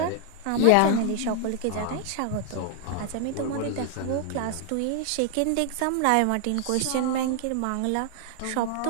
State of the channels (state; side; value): different; both; correlation 0.00